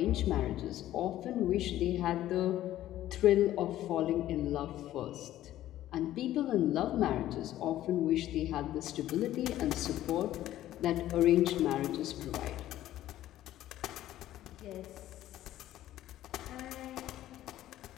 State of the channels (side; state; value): right; quieter; 13.6 dB